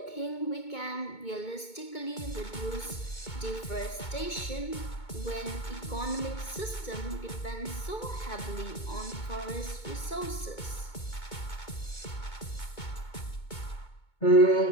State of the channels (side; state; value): right; late; 2.2 ms